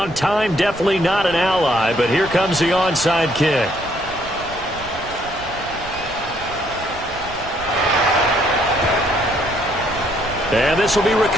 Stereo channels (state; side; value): noise; right; rumble, 16 dB below the sound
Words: Time definitely not an ally, but here comes the onside kick. And this will be